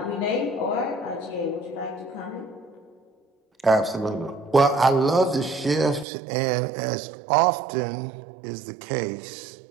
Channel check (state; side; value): drops out; left; at 6.1 s